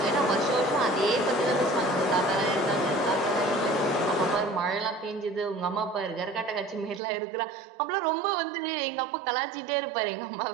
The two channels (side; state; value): left; drops out; at 7.0 s